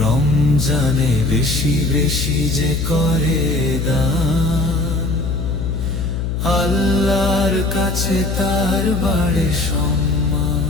রমজানে বেশি বেশি যে করে দান, আল্লাহর কাছে তার বাড়ে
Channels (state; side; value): noise; left; hum, 1 dB below the sound